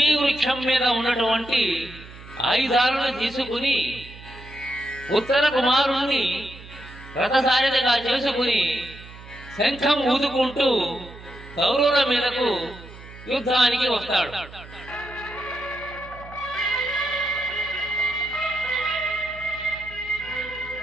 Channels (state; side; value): noise; right; hum, 17 dB below the sound